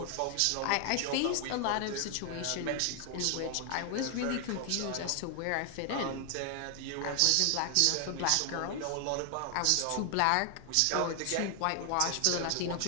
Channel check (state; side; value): different; both; correlation 0.00